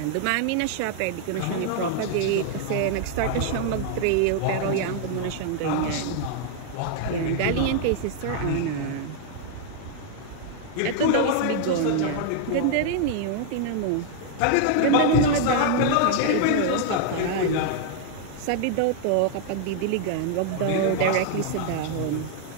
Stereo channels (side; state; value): both; different; correlation 0.00